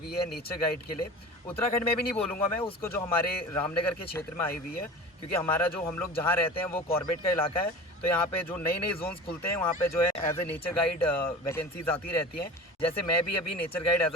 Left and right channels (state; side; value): normal; both; correlation 0.36